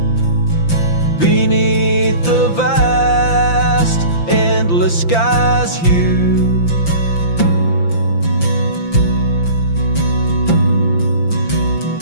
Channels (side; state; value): right; late; 5.9 ms